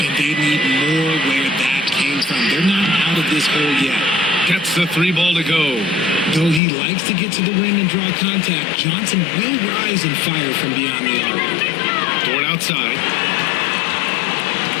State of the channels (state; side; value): drops out; right; at 6.6 s